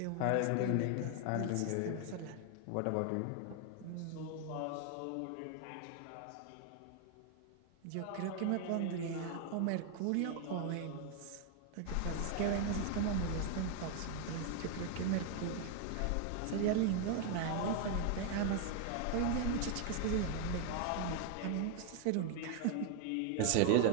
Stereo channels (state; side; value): different; both; correlation 0.00